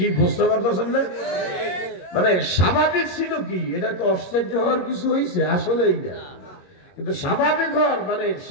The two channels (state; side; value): late; right; 21 ms